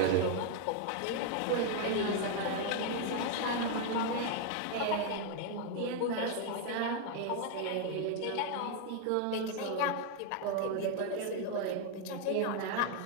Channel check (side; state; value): both; different; correlation 0.00